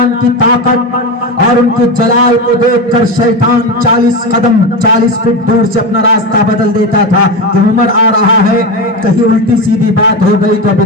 کی طاقت اور ان کی جلال کو دیکھ کر شیطان 40 فٹ دور سے اپنا راستہ بدل دیتا تھا کہ عمر آ رہا ہے، کہیں الٹی سیدھی بات ہو گئی تو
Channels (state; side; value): normal; both; correlation 0.19